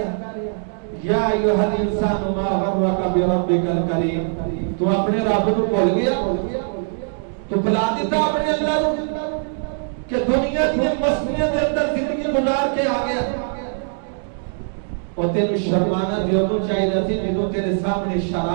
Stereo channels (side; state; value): left; silent; digital silence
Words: یا ایھا الانسان ما غرک بربک الکریم, تو اپنے رب کو بھول گیا, تو بلا دیتا اپنے اللہ کو کہ دنیا کی مستیاں کے اندر زندگی گزار کے آ گیا. اور تینوں شرمانا دیوں چاہیے سی جنہوں تیرے سامنے